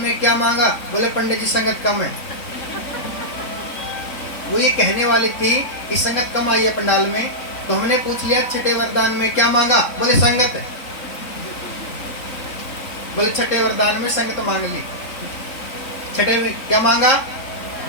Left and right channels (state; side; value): late; right; 3.6 ms